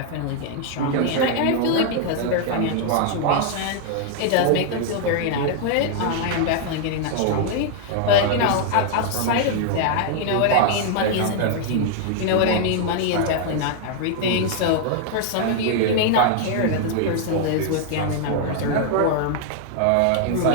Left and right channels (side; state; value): both; different; correlation 0.00